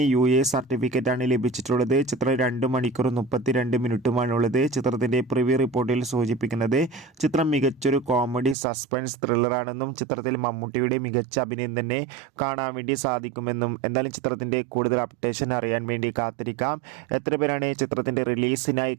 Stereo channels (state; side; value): drops out; left; at 8.6 s